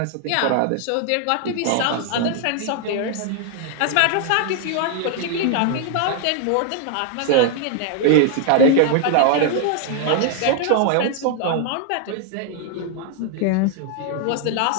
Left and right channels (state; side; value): different; both; correlation 0.00